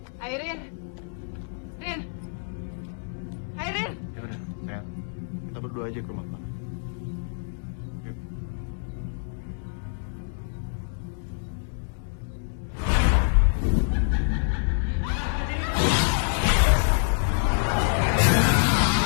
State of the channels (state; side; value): silent; right; 60 dB below the other